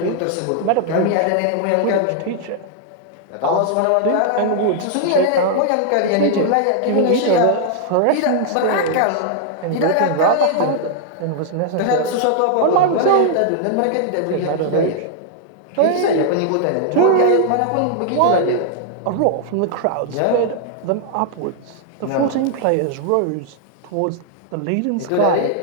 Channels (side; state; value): both; different; correlation 0.00